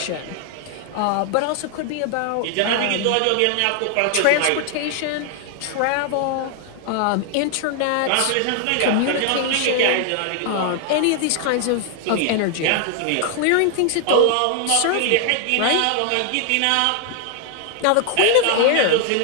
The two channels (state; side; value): different; both; correlation 0.00